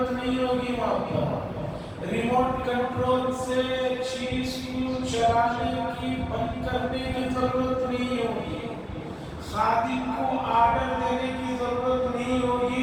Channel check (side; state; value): both; identical; correlation 1.00